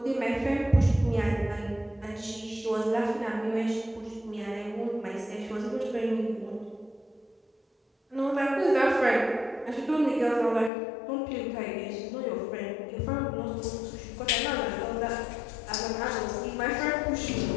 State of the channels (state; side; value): drops out; right; at 10.7 s